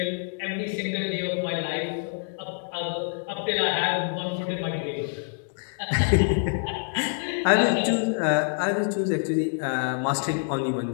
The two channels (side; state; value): right; silent; digital silence